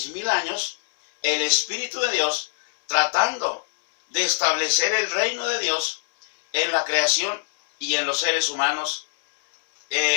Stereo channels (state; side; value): silent; right; digital silence